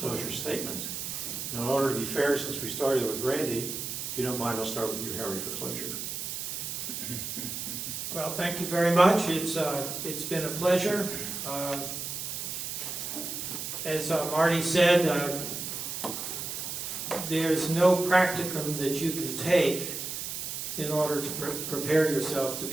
statement. Now, in order to be fair, since we started with Randy, if you don't mind, I'll start with you, Harry, for closure. Well, thank you very much. It's been a pleasure. As Marty said, there's no practicum that you can take in order to prepare yourself to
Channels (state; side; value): noise; right; hiss, 5 dB below the sound